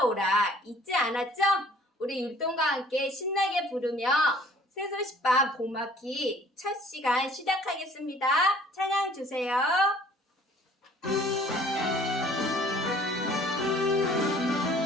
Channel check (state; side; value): normal; both; correlation 0.54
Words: 잊지 않았죠? 우리 율동과 함께 신나게 부르며 새소식반 봄학기 첫 시간 시작하겠습니다. 찬양 주세요.